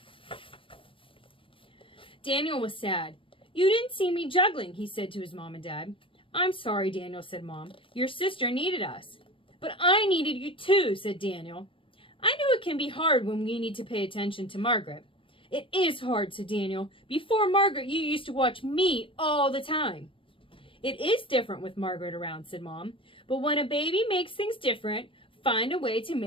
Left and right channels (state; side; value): late; right; 0.25 ms